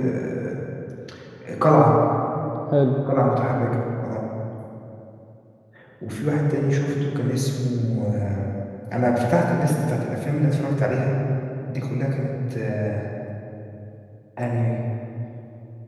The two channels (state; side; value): identical; both; correlation 1.00